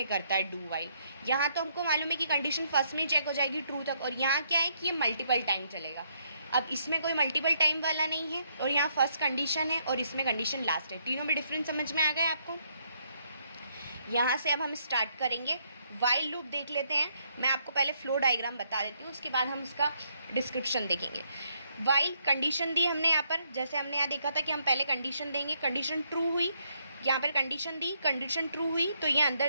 करता है डू वाइल. यहाँ तो हमको मालूम है कि कंडीशन फर्स्ट में ही चेक हो जाएगी ट्रू तक, और यहाँ क्या है कि ये मल्टीपल टाइम चलेगा. अब इसमें कोई मल्टीपल टाइम वाला नहीं है, और यहाँ फर्स्ट कंडीशन है और इसमें कंडीशन लास्ट है. तीनों में डिफरेंस समझ में आ गया आपको? यहाँ से अब हम स्टार्ट करेंगे. वाइल लूप देख लेते हैं. मैं आपको पहले फ्लो डायग्राम बता देती हूँ, उसके बाद हम उसका डिस्क्रिप्शन देखेंगे. वाइल कंडीशन दी हमने यहाँ पर, जैसे हमने यहाँ देखा था कि हम पहले कंडीशन देंगे, कंडीशन ट्रू हुई, यहाँ पर कंडीशन दी, कंडीशन ट्रू हुई तो ये अंदर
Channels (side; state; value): both; inverted; correlation -0.73